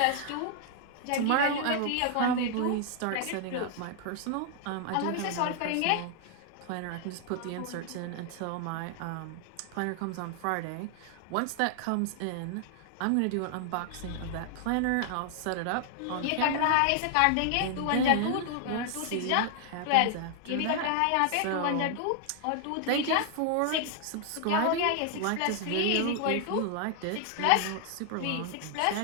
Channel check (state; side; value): different; both; correlation 0.00